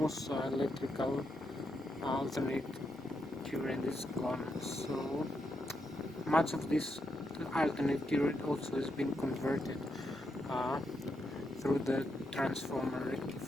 electrical alternate current is gone. So much of this alternate current also has been converted through the transformer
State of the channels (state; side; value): normal; both; correlation 0.82